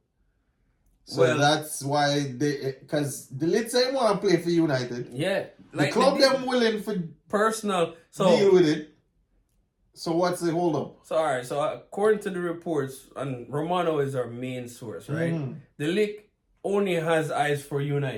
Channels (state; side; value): identical; both; correlation 1.00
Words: So that's why because De Ligt ain't want to play for United. Yeah. The club them willing for personal deal with it. So what's the hold up? So alright, so according to the reports, and Romano is our main source, right? De Ligt only has eyes for